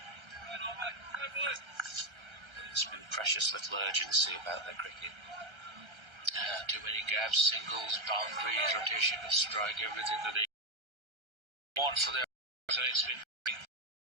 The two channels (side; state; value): left; late; 1.3 ms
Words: There's been precious little urgency about their cricket. Too many gaps, singles, boundaries, rotation of strike, everything that they want for their and it's been